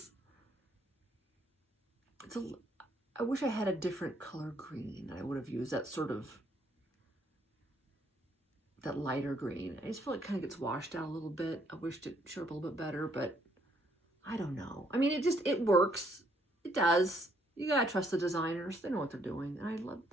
I wish I had a different color green. I would have used that sort of, that lighter green. I just feel like it kind of gets washed out a little bit. I wished it showed up a little bit better, but I don't know. I mean, it works. It does. You gotta trust the designers. They know what they're doing. And I love,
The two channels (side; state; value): both; normal; correlation 0.69